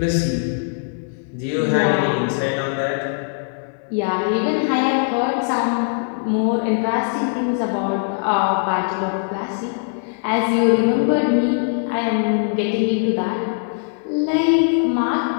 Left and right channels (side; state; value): right; silent; 59 dB below the other